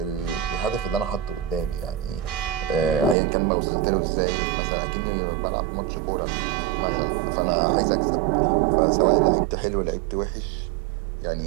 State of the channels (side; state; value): left; drops out; at 3.2 s